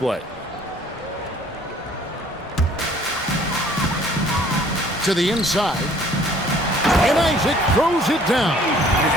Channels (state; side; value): normal; both; correlation 0.56